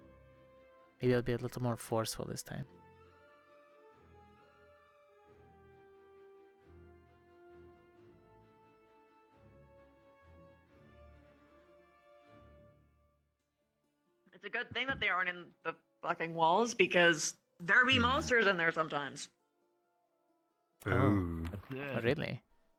Maybe I'll be a little more forceful this time. It's a good thing that they aren't in the fucking walls because there be monsters in there sometimes. Oh, really?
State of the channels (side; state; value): both; identical; correlation 1.00